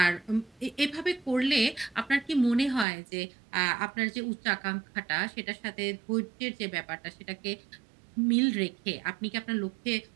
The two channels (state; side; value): drops out; left; at 2.9 s